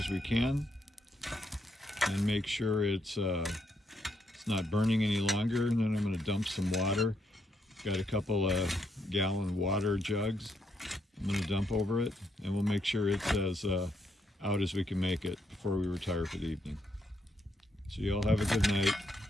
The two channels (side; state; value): both; normal; correlation 0.77